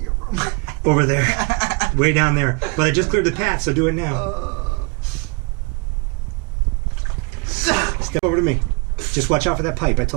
room? Over there, way down there. But I just cleared the path, so do it now. Step over to me. Just watch out for that pipe. I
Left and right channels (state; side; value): quieter; left; 31.1 dB